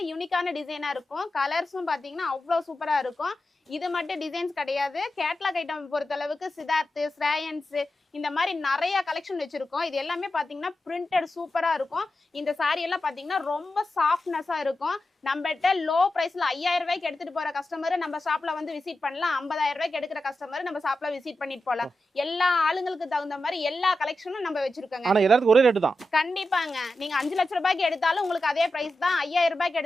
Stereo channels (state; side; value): normal; both; correlation 0.91